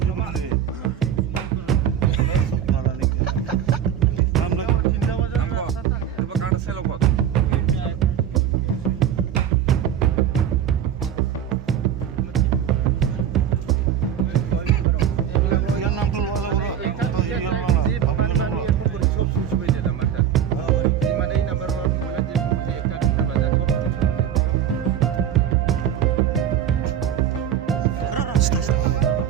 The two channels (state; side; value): quieter; left; 9.4 dB